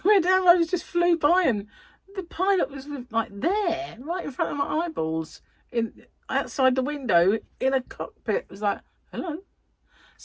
red arrows just flew by, and the pilot was like there, right in front of my eyeballs, outside the window in a cockpit. It was like, hello,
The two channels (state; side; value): identical; both; correlation 1.00